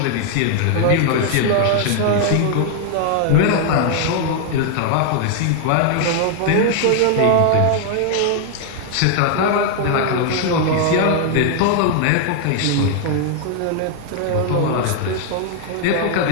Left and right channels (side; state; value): both; different; correlation 0.00